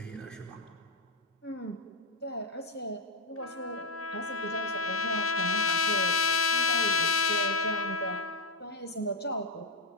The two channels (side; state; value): right; quieter; 3.2 dB